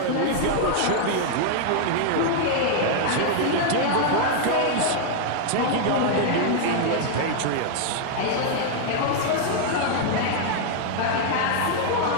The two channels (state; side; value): different; both; correlation 0.00